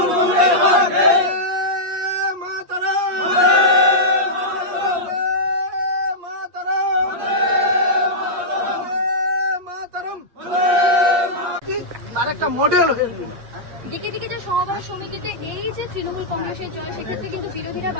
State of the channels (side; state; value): left; late; 8.2 ms